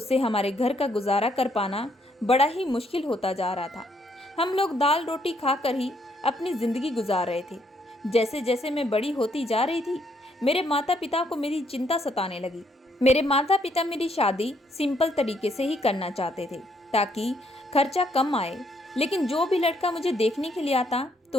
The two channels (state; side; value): normal; both; correlation 0.71